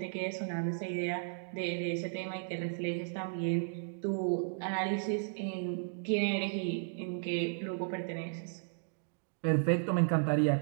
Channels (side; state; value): left; silent; digital silence